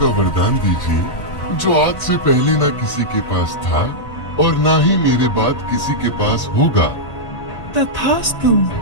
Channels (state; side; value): late; right; 1.8 ms